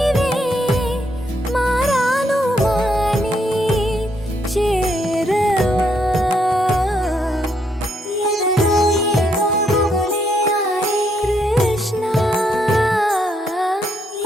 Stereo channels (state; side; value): normal; both; correlation 0.75